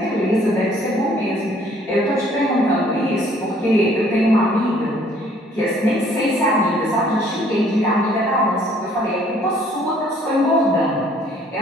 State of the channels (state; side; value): normal; both; correlation 0.60